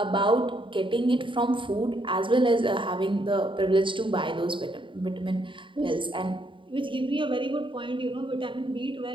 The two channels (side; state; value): left; late; 0.24 ms